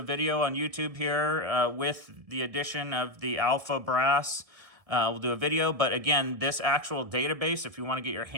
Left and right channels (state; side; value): late; left; 1.7 ms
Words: video on YouTube here with the addition of the alpha brass. We'll do a video, but again, this actual database, if you want to get your